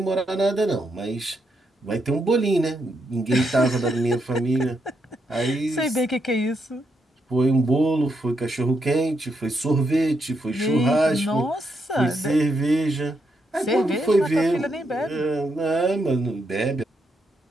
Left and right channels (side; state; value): both; normal; correlation 0.80